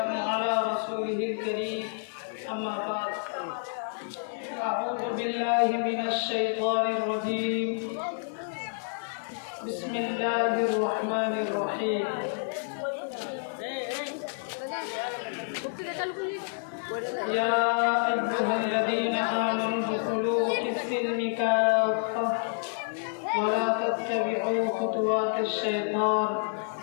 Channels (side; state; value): right; silent; 59 dB below the other